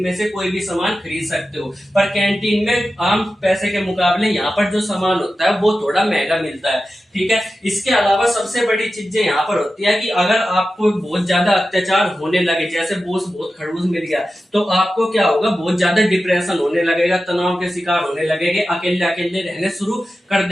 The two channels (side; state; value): both; normal; correlation 0.93